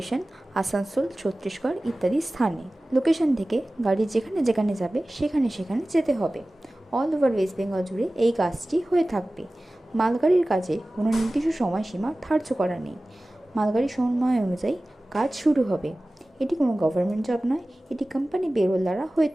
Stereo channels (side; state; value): both; normal; correlation 0.97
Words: আসানসোল, ছত্তিশগড় ইত্যাদি স্থানে। লোকেশন থেকে গাড়ি যেখানে যেখানে যাবে সেখানে সেখানে যেতে হবে। অল ওভার ওয়েস্ট বেঙ্গল জুড়ে এই কাজটি হয়ে থাকবে। মালগাড়ির কাজে কোনো নির্দিষ্ট সময়সীমা ধার্য করা নেই। মালগাড়ির সময় অনুযায়ী কাজ শুরু হবে। এটি কোনো গভর্নমেন্ট জব নয়, এটি কোম্পানি পেরোল দ্বারা হয়ে